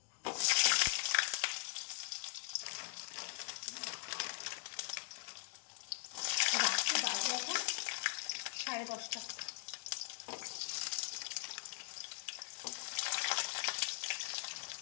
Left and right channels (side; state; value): right; silent; digital silence